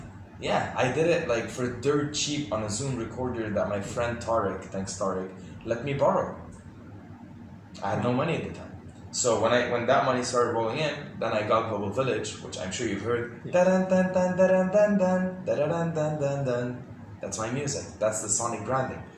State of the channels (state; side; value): identical; both; correlation 1.00